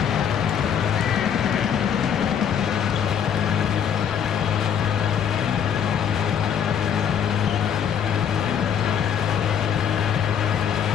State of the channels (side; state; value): right; quieter; 8.2 dB